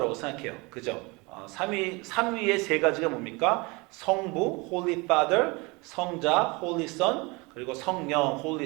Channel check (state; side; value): quieter; left; 26.5 dB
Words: 생각해요. 그죠? 삼위의 세 가지가 뭡니까? 성부, Holy Father, 성자, Holy Son, 그리고 성령, Holy